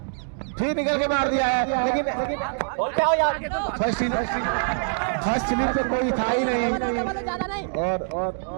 फिर निकल के मार दिया है, लेकिन फर्स्ट स्लिप पे कोई था ही नहीं और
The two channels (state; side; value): silent; left; digital silence